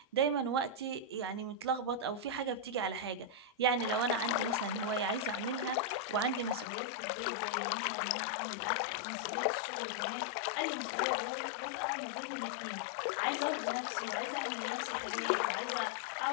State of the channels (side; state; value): right; drops out; at 6.7 s